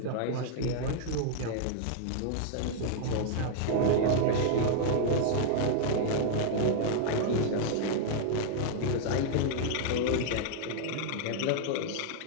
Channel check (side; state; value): both; different; correlation 0.00